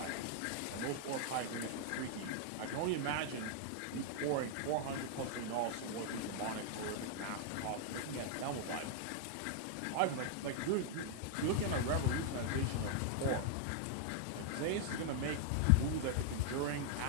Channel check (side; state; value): both; different; correlation 0.00